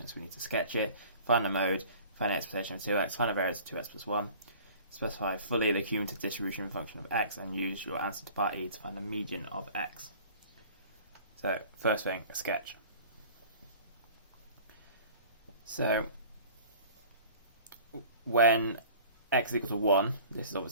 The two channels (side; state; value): both; inverted; correlation -0.46